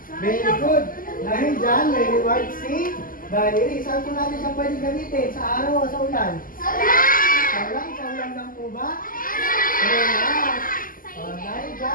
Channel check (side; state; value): right; late; 0.41 ms